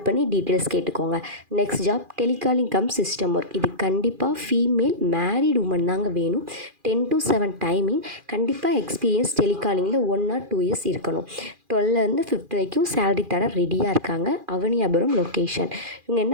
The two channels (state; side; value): late; left; 2.4 ms